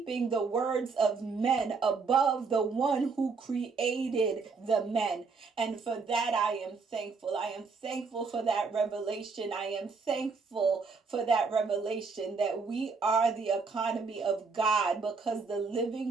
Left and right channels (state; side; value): quieter; left; 4.7 dB